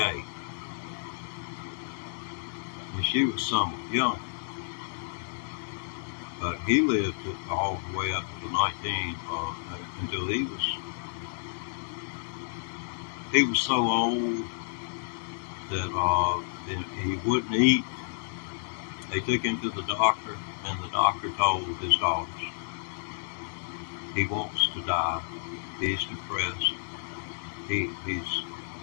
and she was somewhat young. But he lived all the way up to 19 until he was so old that he wouldn't eat. They took him to the doctor, and the doctor told his daughters, he wants to die. He's depressed. He's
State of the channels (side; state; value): right; silent; digital silence